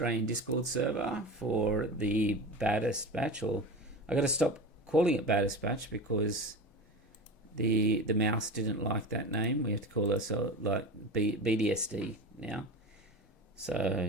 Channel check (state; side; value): normal; both; correlation 0.29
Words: Discord server for the Baddest Batch. Or I got to stop calling it Baddest Batch because the mouse didn't like that name. We have to call ourselves like BDSD now.